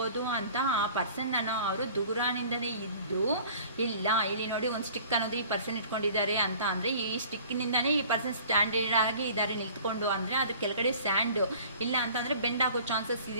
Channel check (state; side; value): inverted; both; correlation -0.48